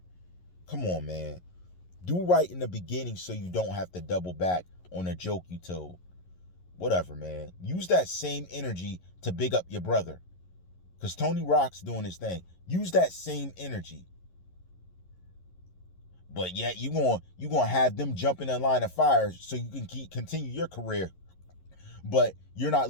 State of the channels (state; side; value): late; right; 11 ms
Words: Come on, man. Do right in the beginning so you don't have to double back on a joke you told. Whatever, man. Use that same energy to big up your brother. Because Tony Rock's doing his thing. Use that same energy. But yet you gonna have them jump in the line of fire so you can continue your career. But you're not